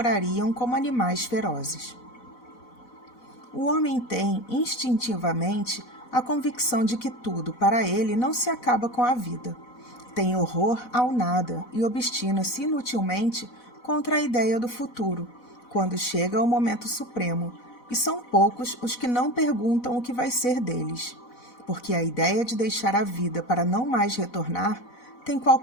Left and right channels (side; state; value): right; late; 4.0 ms